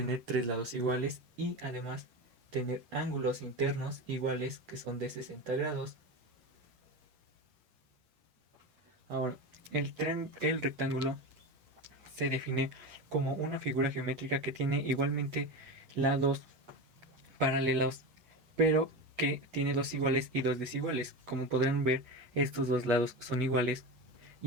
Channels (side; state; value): left; late; 8.8 ms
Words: tres lados iguales y además tener ángulos internos iguales que son de 60 grados. Ahora, el rectángulo se define como una figura geométrica que tiene igualmente lados paralelos, pero que tiene dos iguales y dos desiguales. Como podrán ver, estos dos lados son iguales